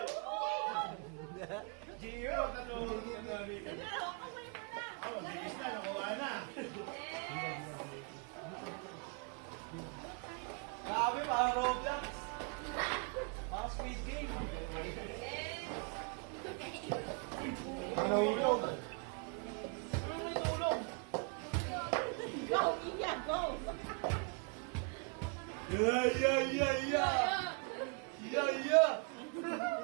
Gio, natulog ka na rin. Oh, bilis ka, nakuha na. Grabe, parang Roblox. Parang Squid Game. Ano ulog? Yeah, yeah, yeah, yeah. Yeah, yeah.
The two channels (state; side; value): quieter; left; 36.3 dB